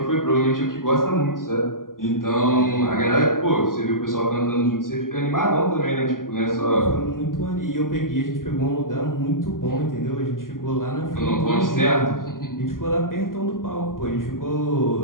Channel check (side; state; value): right; late; 0.91 ms